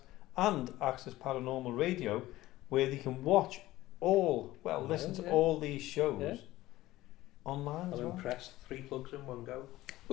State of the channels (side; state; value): right; quieter; 16.6 dB